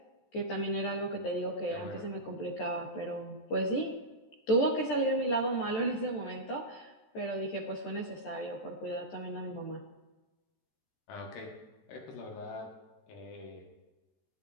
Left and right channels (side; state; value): right; late; 13 ms